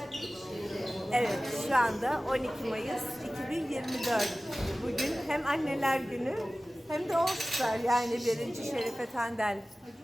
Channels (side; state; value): both; normal; correlation 0.97